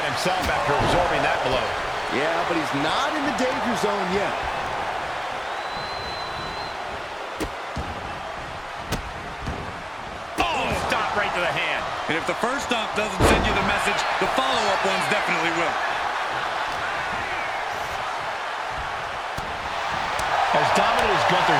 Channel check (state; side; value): identical; both; correlation 1.00